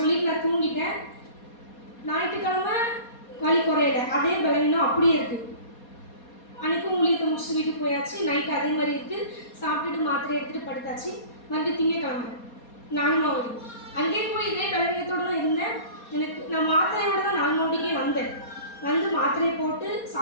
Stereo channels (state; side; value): late; right; 4.2 ms